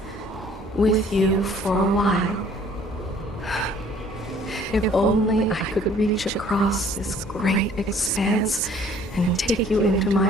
with you for a while. If only I could reach across this great expanse and take you into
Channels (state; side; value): normal; both; correlation 0.56